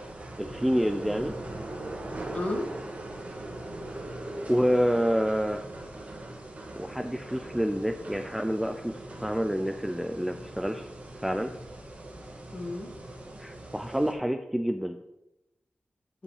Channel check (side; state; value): both; normal; correlation 0.98